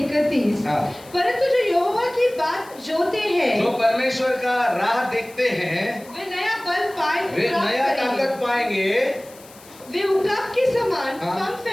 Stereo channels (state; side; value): noise; left; hiss, 22 dB below the sound